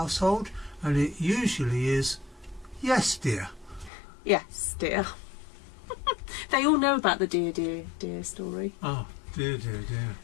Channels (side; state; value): right; drops out; at 3.9 s